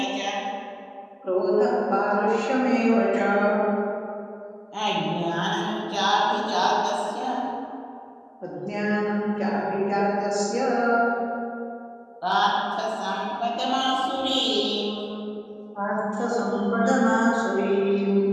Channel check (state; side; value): identical; both; correlation 1.00